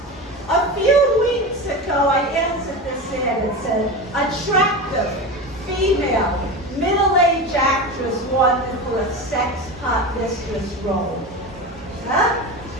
A few weeks ago, I answered this ad. It said, attractive, female, middle-aged actress wanted for a sex pot mistress role. Huh?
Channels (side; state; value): both; normal; correlation 0.25